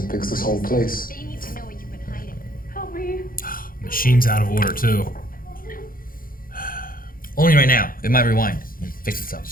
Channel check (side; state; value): right; late; 0.41 ms